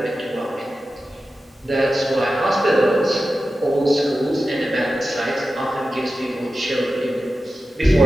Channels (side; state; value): both; normal; correlation 0.93